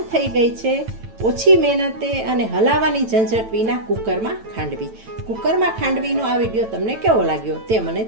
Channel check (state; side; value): late; left; 9.0 ms